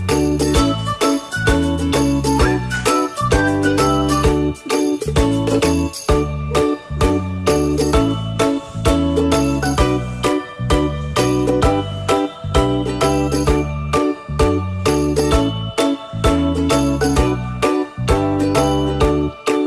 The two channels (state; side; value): identical; both; correlation 1.00